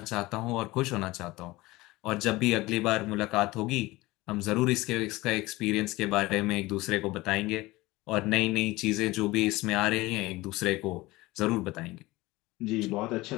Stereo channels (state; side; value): quieter; right; 20.1 dB